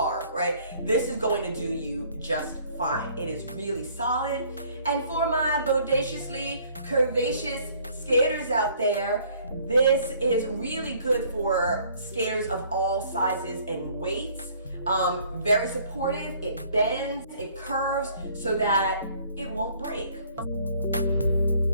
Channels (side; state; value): both; inverted; correlation -0.58